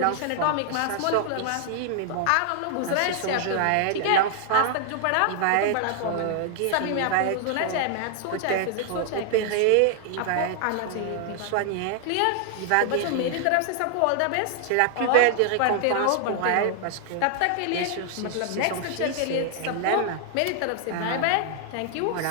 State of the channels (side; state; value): both; different; correlation 0.00